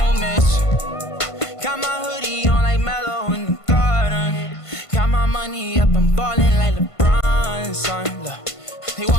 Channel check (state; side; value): late; right; 1.5 ms